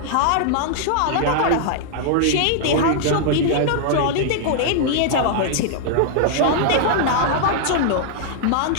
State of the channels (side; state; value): both; different; correlation -0.01